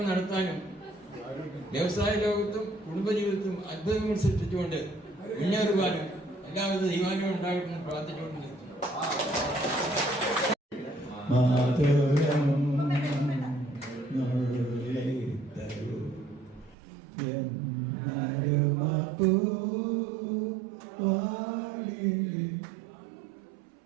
നടത്താനും വ്യവസായ ലോകത്തും കുടുംബജീവിതത്തും അത്ഭുതങ്ങൾ സൃഷ്ടിച്ചുകൊണ്ട് മുന്നേറുവാനും എല്ലാവിധ ദൈവാനുവും ഉണ്ടാകട്ടെ എന്ന് പ്രാർത്ഥിച്ചുകൊണ്ട് നിർത്തുന്നു.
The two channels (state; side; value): drops out; left; at 16.8 s